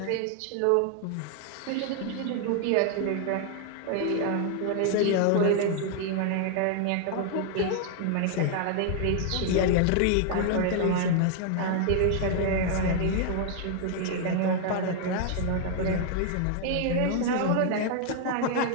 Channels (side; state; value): both; different; correlation 0.00